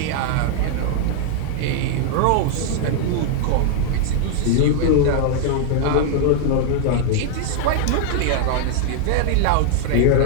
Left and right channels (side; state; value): both; different; correlation 0.00